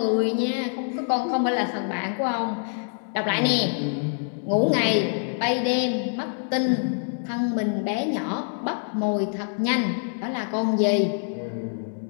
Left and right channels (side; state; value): right; silent; digital silence